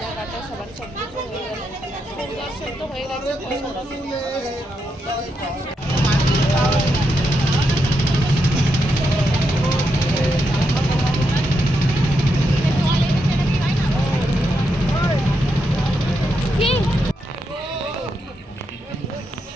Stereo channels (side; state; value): both; normal; correlation 0.83